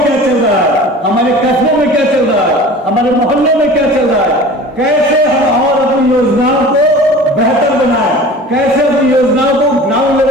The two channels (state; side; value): normal; both; correlation 0.40